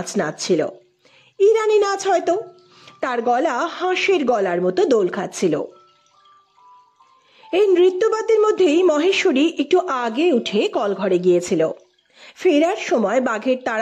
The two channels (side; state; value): both; identical; correlation 1.00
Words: নাচছিল। ইরানি নাচ হয়তো। তার গলা হাঁসের গলার মতো দোল খাচ্ছিল। এই নৃত্যবাদ্যের মধ্যেই মহেশ্বরী একটু আগে উঠে কলঘরে গিয়েছিল। ফেরার সময় বাঘের